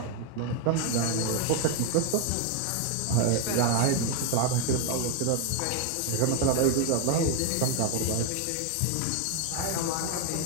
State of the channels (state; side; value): different; both; correlation 0.01